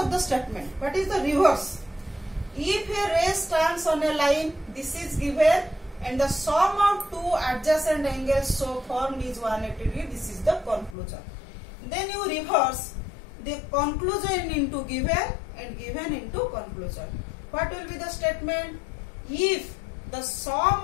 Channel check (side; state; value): right; drops out; at 11.0 s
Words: the statement? What is the reverse? If a ray stands on a line, this is given, and the sum of two adjacent angles so formed is 180 degree. This is the conclusion. Then you reverse the conclusion into given and given into conclusion. What will be the statement? If the